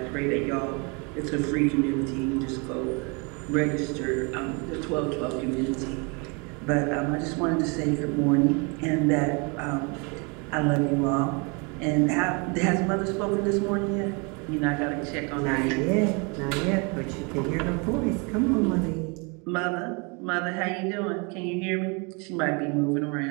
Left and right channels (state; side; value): quieter; left; 31.7 dB